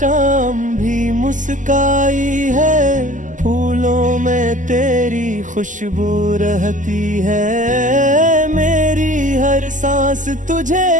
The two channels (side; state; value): left; late; 0.37 ms